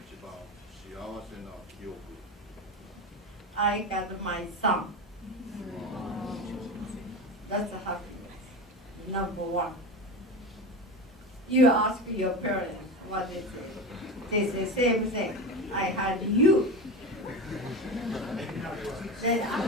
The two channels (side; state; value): both; normal; correlation 0.24